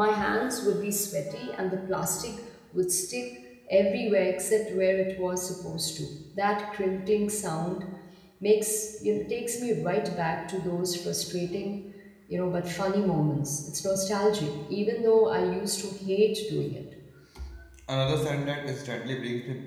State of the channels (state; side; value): identical; both; correlation 1.00